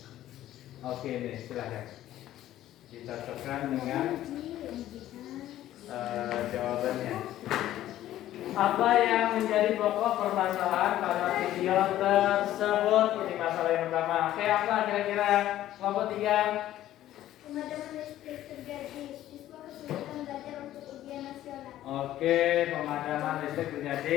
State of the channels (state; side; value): quieter; right; 13.4 dB